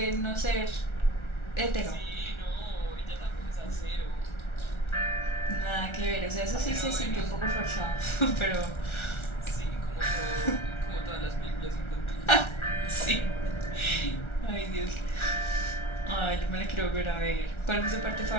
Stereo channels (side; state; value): right; late; 1.4 ms